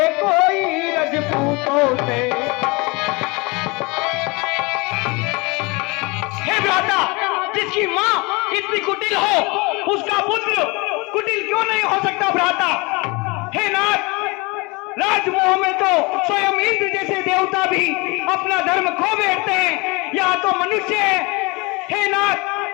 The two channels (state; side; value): quieter; right; 26.6 dB